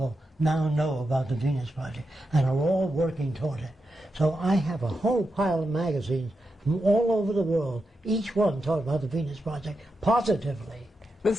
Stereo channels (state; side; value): normal; both; correlation 0.87